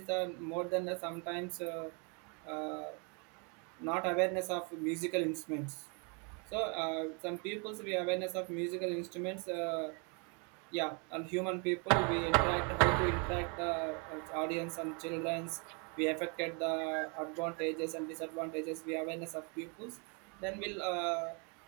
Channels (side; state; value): left; quieter; 34.8 dB